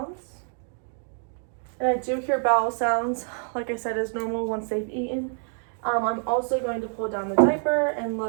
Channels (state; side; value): silent; left; 55 dB below the other